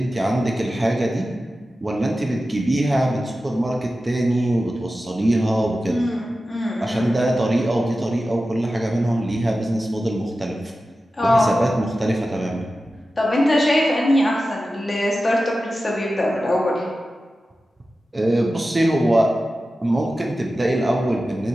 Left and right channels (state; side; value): normal; both; correlation 0.94